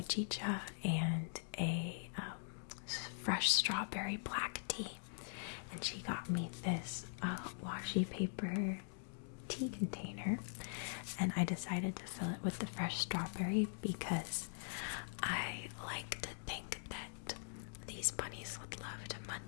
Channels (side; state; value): right; silent; digital silence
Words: and a fresh strawberry black tea, and she got me this washi paper tea container, and I decided to fill it with the fresh strawberry because I like to think that these bunnies would love to